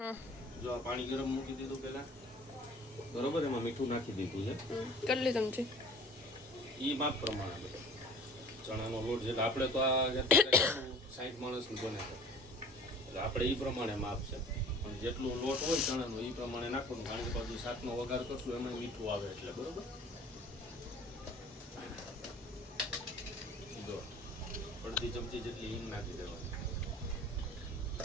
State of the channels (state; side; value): normal; both; correlation 0.46